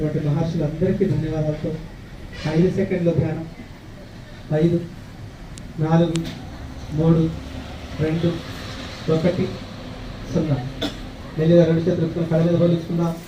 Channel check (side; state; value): both; identical; correlation 1.00